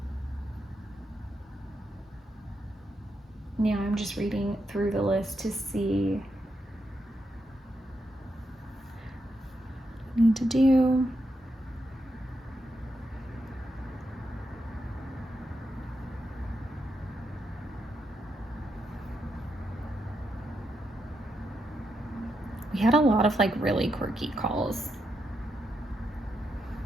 Now I'm just reading through the list to see what I need to do. We had a lot of like really quirky calls.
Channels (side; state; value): both; normal; correlation 0.83